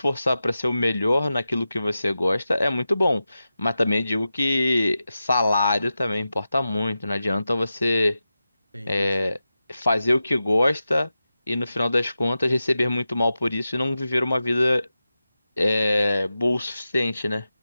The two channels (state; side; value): inverted; both; correlation -0.93